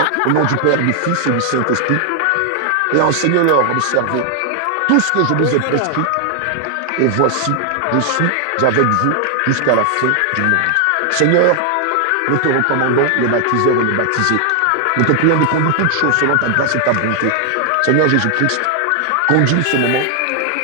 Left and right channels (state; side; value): different; both; correlation 0.00